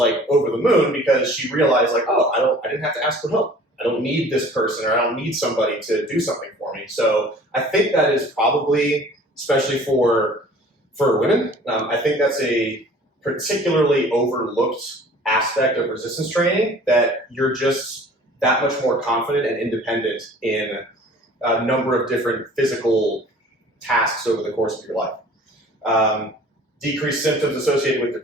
over the moon because she realized like, I didn't have to ask for help. I don't need this person, or I don't need somebody to do something for me. So I think that is probably, especially for women, I think that's a particularly overlooked aspect of resistance training, that you're just that much more confident and independent in a number of different physical tasks over the course of your life. Decreased symptoms associated with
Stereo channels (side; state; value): both; normal; correlation 0.48